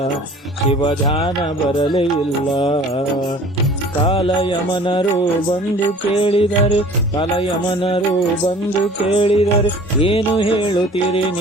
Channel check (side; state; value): both; normal; correlation 0.47